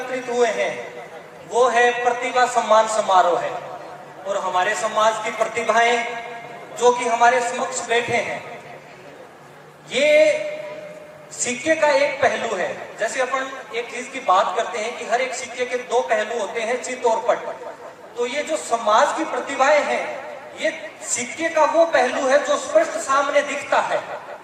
हुए हैं वो है प्रतिभा सम्मान समारोह है। और हमारे समाज की प्रतिभाएं जो कि हमारे समक्ष बैठे हैं, ये सिक्के का एक पहलू है। जैसे अपन एक चीज की बात करते हैं कि हर एक सिक्के के दो पहलू होते हैं, चित और पट। तो ये जो समाज की प्रतिभाएं हैं, ये सिक्के का वो पहलू है जो स्पष्ट सामने दिखता है।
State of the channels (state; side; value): identical; both; correlation 1.00